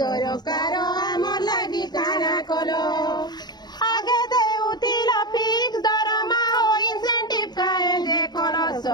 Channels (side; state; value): right; late; 0.20 ms